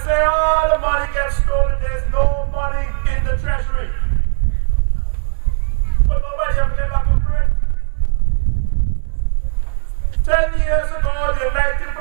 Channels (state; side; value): silent; left; digital silence